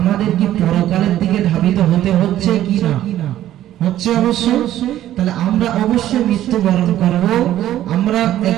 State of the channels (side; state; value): left; quieter; 12.8 dB